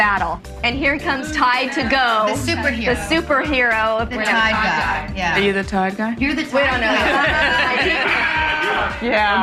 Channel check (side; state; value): both; identical; correlation 1.00